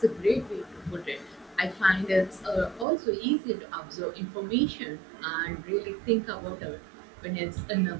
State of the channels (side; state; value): left; drops out; at 2.9 s